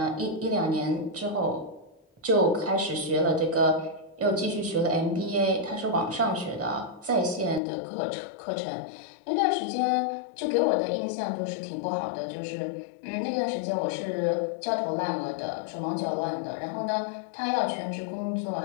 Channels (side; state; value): right; drops out; at 7.6 s